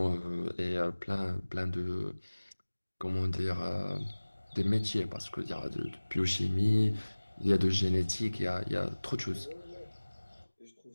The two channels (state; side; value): inverted; both; correlation -1.00